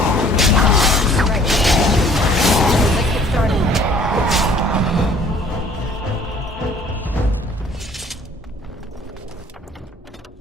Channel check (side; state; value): both; normal; correlation 0.55